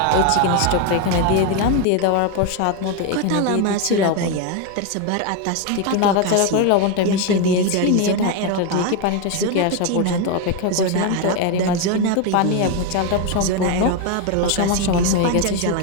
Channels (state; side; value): different; both; correlation 0.02